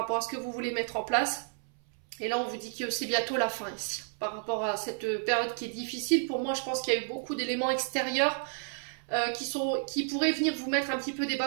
à ce que vous voulez mettre en place. Et là, on vous dit que c'est bientôt la fin ici. Par rapport à cette période qui est difficile, pour moi, je pense qu'il y a eu beaucoup d'éléments extérieurs qui pourraient venir vous mettre un petit peu des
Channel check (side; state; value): left; silent; 57 dB below the other